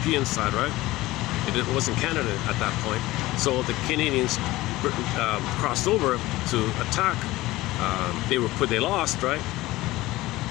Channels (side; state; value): right; quieter; 18.3 dB